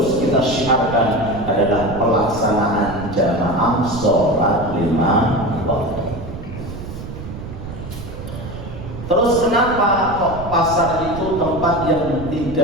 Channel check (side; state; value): right; noise; rumble, 10 dB below the sound